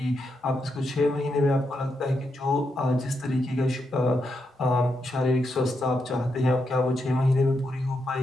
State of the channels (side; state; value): both; normal; correlation 0.82